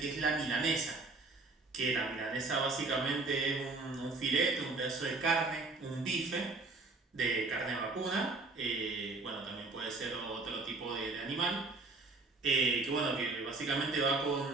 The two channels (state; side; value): quieter; left; 3.6 dB